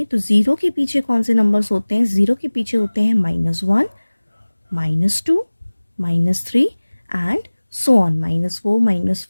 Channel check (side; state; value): both; inverted; correlation -1.00